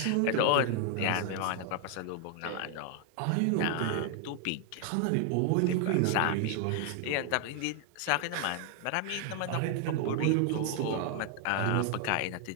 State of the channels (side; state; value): both; different; correlation 0.00